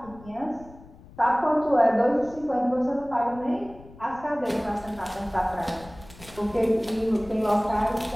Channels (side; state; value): left; noise; rumble, 21 dB below the sound